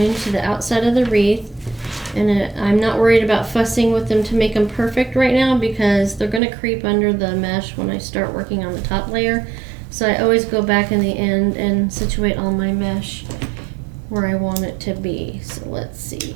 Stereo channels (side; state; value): left; drops out; at 6.4 s